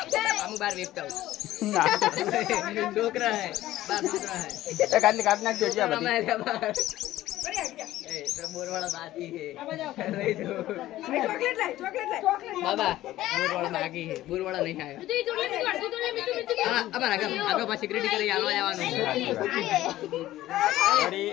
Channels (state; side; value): quieter; right; 15.0 dB